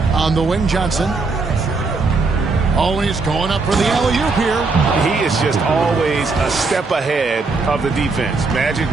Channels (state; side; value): quieter; left; 4.0 dB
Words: On the wing, Johnson. Oh, he's going up for the alley-oop here. He is just always a step ahead of the defense. Magic